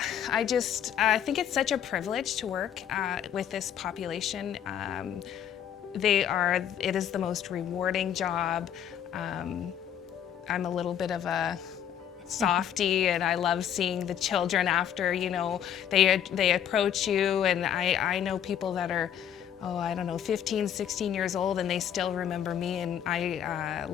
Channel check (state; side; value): quieter; right; 9.5 dB